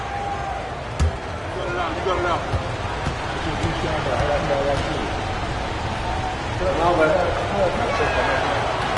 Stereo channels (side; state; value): both; identical; correlation 1.00